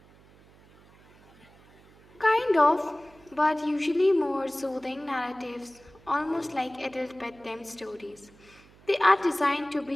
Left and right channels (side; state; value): right; noise; hum, 26 dB below the sound